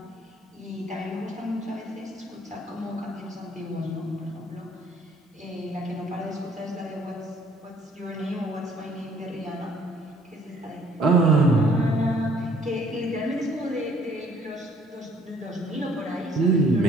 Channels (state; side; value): normal; both; correlation 0.60